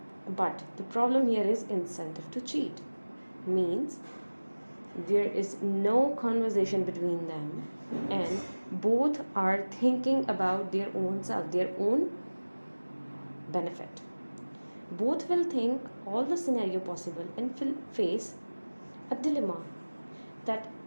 But the problem here is incentive to cheat. Means there is no conversation between them and both are thinking about their own self, their own benefit. Both will think all the scenario possible and will face a dilemma that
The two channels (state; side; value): inverted; both; correlation -1.00